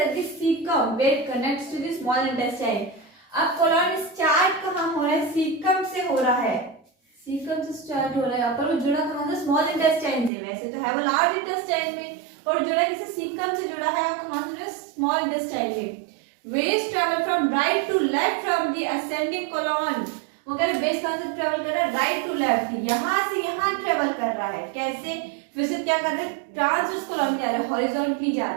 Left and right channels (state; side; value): drops out; left; at 10.3 s